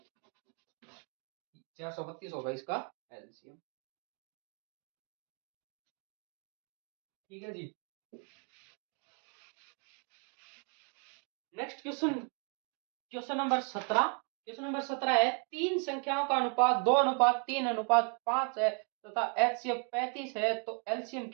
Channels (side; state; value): left; quieter; 39.8 dB